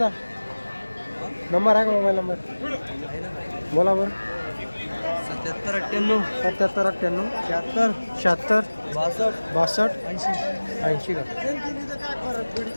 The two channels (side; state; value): both; inverted; correlation -1.00